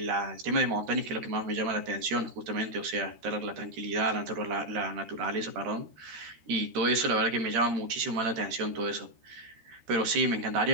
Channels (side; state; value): left; late; 13 ms